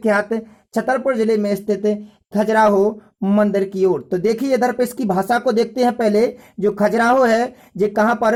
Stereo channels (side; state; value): both; identical; correlation 1.00